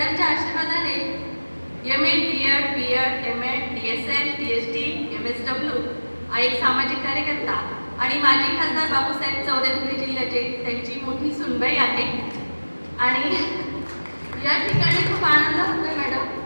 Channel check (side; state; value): both; inverted; correlation -1.00